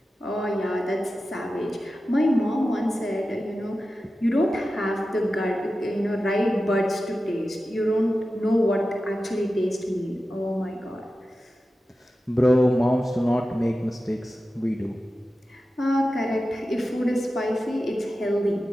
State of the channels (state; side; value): normal; both; correlation 0.93